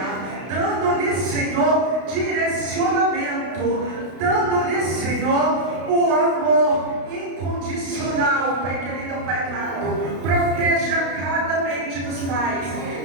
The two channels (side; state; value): left; late; 32 ms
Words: dando-lhe, Senhor, direcionamento, dando-lhe, Senhor, o amor incondicional. Pai querido, Pai amado, proteja cada mente dos pais,